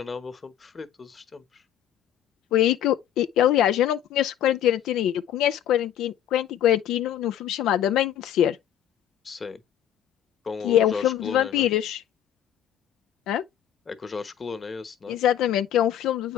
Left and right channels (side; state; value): right; quieter; 10.7 dB